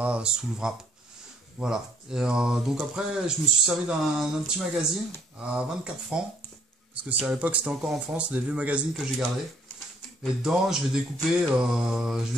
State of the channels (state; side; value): normal; both; correlation 0.64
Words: sous le wrap. Voilà. Et, donc après, je me suis servi d'un petit magazine à 24 francs, parce que c'est à l'époque, c'était encore en France, des vieux magazines que j'ai gardés. Et dedans, je vais découper